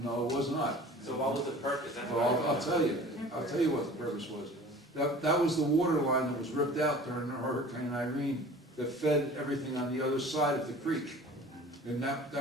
No, it was not. So what was the purpose? That's what Well, I I'll tell you what the purpose was. That was the water line that was ripped out during Hurricane Irene that fed everything on the other side of the creek. And that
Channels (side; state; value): both; normal; correlation 0.43